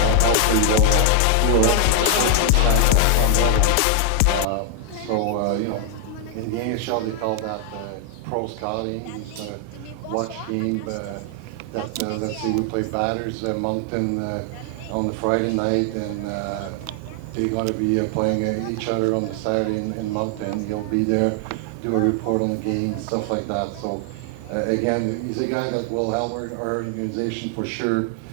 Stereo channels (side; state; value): both; different; correlation 0.00